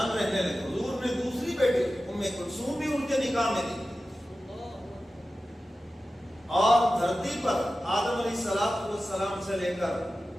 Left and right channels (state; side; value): normal; both; correlation 0.94